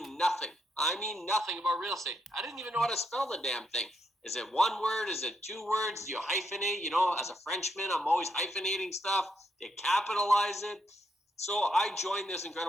nothing. I mean, nothing about real estate. I didn't even know how to spell the damn thing. Is it one word? Is it two words? Do you hyphenate? As a Frenchman, I'm always hyphenating stuff. Do you capitalize it? So I joined this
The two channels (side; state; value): both; normal; correlation 0.78